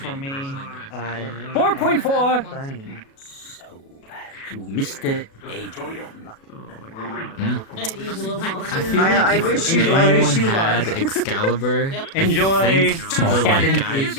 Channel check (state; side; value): late; right; 37 ms